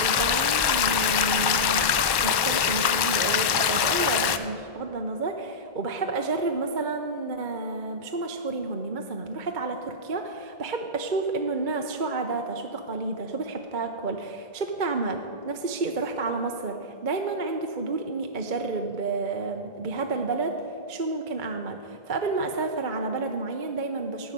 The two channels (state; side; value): late; left; 1.2 ms